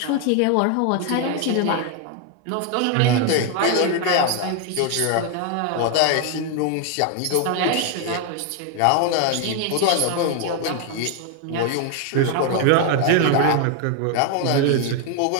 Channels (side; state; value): both; different; correlation 0.00